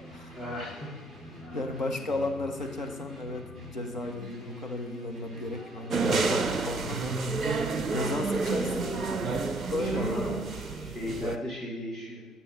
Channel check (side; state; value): both; normal; correlation 0.63